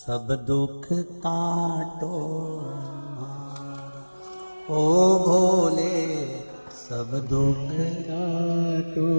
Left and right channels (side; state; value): both; inverted; correlation -1.00